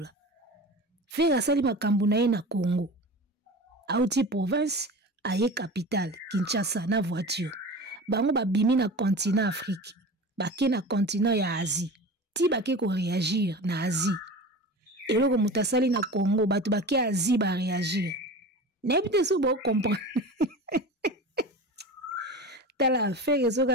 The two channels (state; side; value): normal; both; correlation 0.33